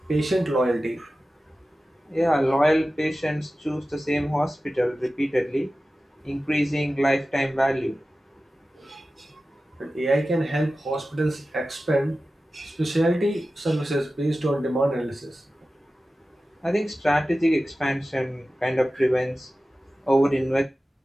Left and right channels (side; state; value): both; normal; correlation 0.95